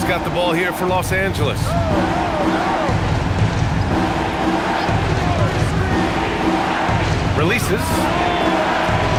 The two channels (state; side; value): identical; both; correlation 1.00